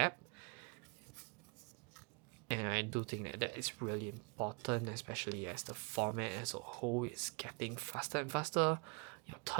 And I do think that that is really important, especially as the format as a whole is getting faster and faster. Your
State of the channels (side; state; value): left; quieter; 31.9 dB